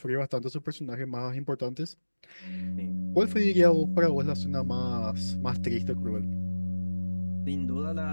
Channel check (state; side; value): inverted; both; correlation -1.00